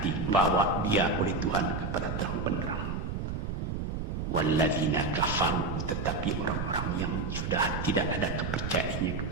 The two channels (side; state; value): right; noise; rumble, 3 dB below the sound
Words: dibawa dia oleh Tuhan kepada terang benderang. Walladzina kafaru, tetapi orang-orang yang sudah tidak ada kepercayaannya